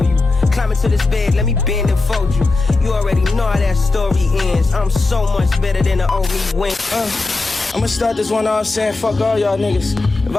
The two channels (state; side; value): quieter; right; 3.5 dB